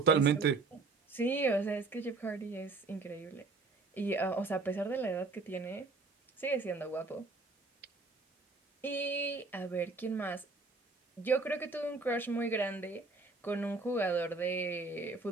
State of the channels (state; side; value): quieter; left; 3.8 dB